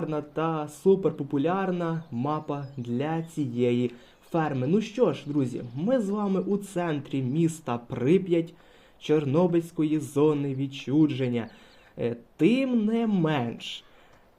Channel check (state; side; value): identical; both; correlation 1.00